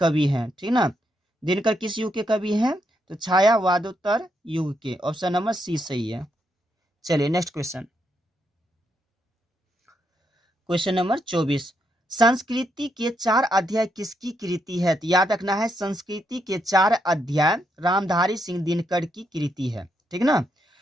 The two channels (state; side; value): normal; both; correlation 0.79